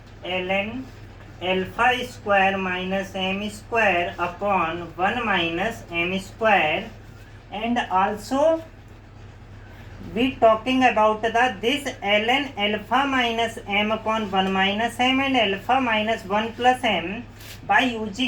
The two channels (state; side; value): identical; both; correlation 1.00